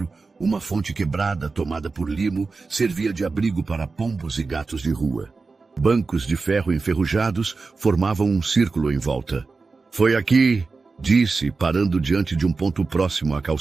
uma fonte quebrada, tomada por limo, servia de abrigo para pombos e gatos de rua. Bancos de ferro enferrujados formavam um círculo em volta. Foi aqui, disse, parando diante de um ponto próximo à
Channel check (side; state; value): left; quieter; 4.2 dB